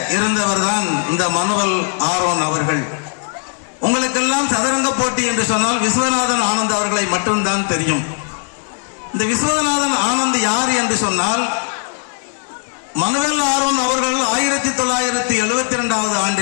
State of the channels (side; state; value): right; silent; 57 dB below the other